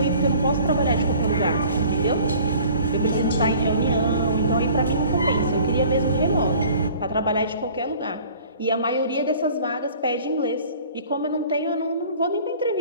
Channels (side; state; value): both; inverted; correlation -0.49